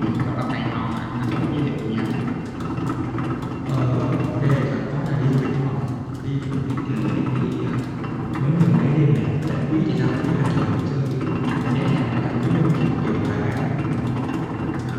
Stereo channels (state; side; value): identical; both; correlation 1.00